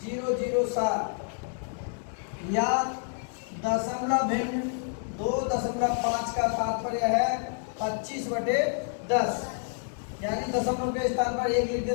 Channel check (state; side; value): silent; right; 59 dB below the other